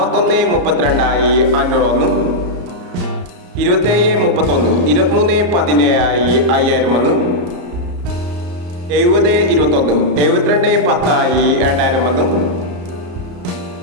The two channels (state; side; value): late; left; 34 ms